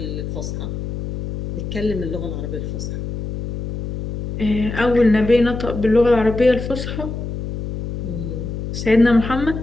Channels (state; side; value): noise; left; hum, 5 dB below the sound